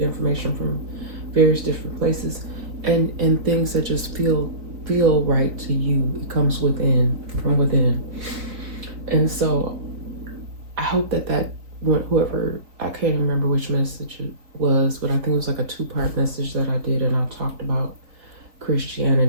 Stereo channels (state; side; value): late; left; 3.9 ms